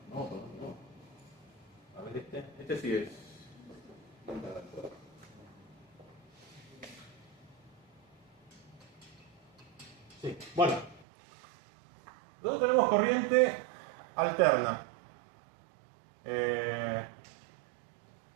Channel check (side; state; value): left; drops out; at 11.1 s